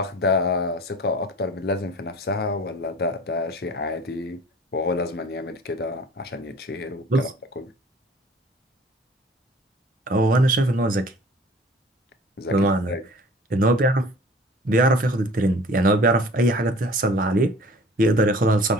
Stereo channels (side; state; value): both; normal; correlation 0.47